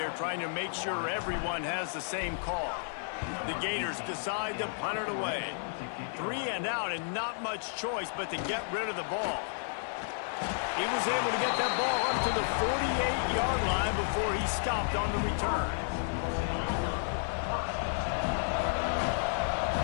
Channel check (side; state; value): right; silent; 56 dB below the other